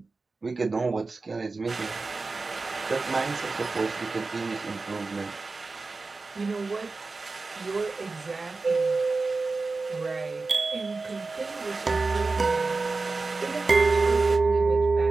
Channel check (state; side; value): quieter; left; 3.8 dB